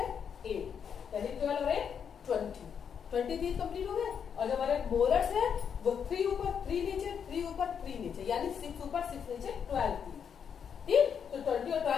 8, यानी 12 और 8 20 टीथ कंप्लीट हो गए। और जो हमारे मोलर्स है वो 3 ऊपर 3 नीचे, 3 ऊपर 3 नीचे, यानी 6 ऊपर 6 नीचे 12 टीथ, ठीक। तो 20 और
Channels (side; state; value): right; quieter; 7.4 dB